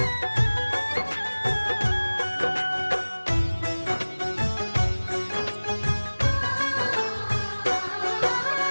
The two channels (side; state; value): both; inverted; correlation -1.00